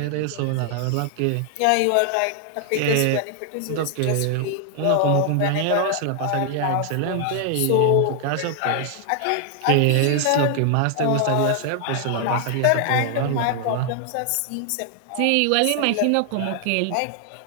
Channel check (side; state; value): both; different; correlation 0.00